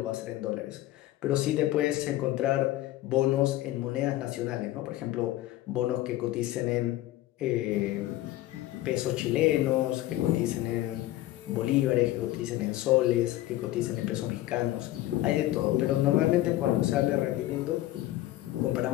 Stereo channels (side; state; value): right; quieter; 15.5 dB